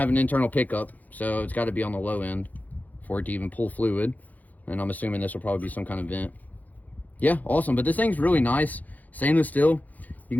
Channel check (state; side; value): late; right; 0.080 ms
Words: an internal pickup, so it's got to be on the low end for it to even pull fluid. And I'm assuming this will probably be some kind of vent. Yeah, awesome. But this thing's really nice. Stainless steel. You